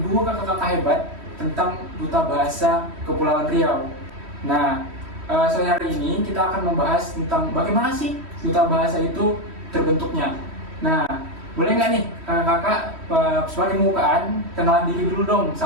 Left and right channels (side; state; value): left; late; 3.1 ms